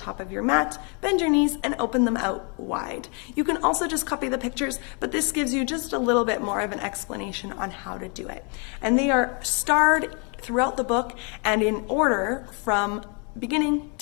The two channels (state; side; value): quieter; right; 36.1 dB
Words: of your mat, bend your knees and open them out wide. You can also just copy the pictures, but this gives you just a little bit more of an explanation on how to do it. And they are starred throughout the book and in order from beginning